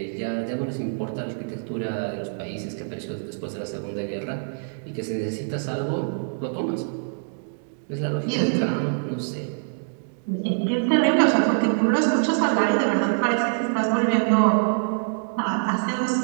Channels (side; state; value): left; silent; digital silence